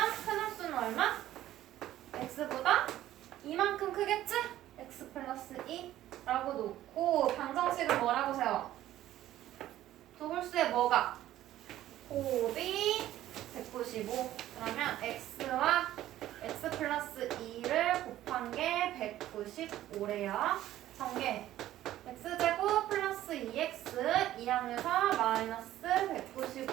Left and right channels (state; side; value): quieter; left; 13.6 dB